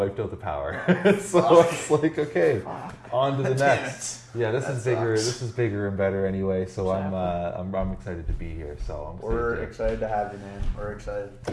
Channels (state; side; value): identical; both; correlation 1.00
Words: out the power. So I was like, okay, on to the next. Yeah, this is bigger. sucks. This is bigger and better anyway. So I'm excited to be here. So We're excited to have you, man. We're excited.